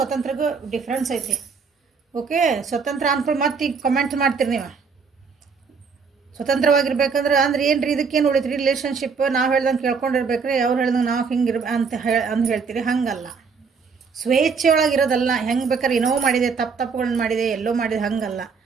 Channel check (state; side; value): quieter; left; 5.4 dB